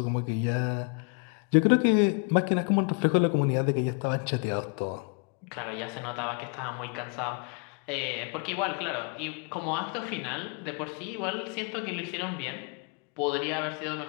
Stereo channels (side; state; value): right; quieter; 35.7 dB